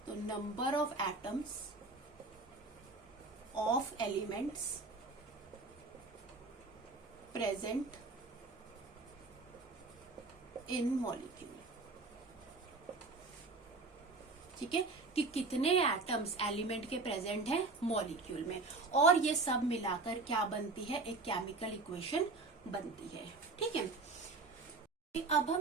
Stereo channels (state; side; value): quieter; left; 3.6 dB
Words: तो number of atoms of elements present in molecule. ठीक है, कि कितने एटम्स एलिमेंट के प्रेजेंट हैं मॉलिक्यूल में, और ये सब मिलाकर क्या बनती है, एक केमिकल इक्वेशन बनती है। ठीक है, अब